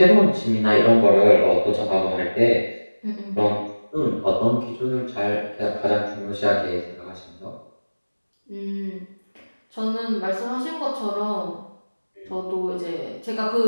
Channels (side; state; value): both; inverted; correlation -1.00